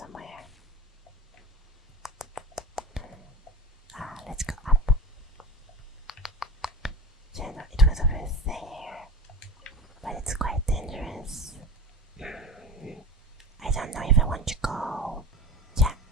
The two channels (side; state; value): both; normal; correlation 0.31